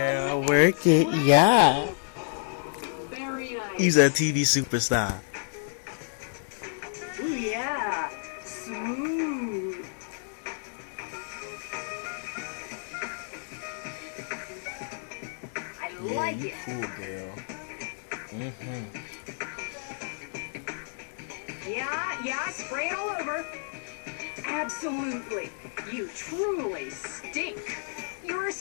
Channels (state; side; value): silent; right; 58 dB below the other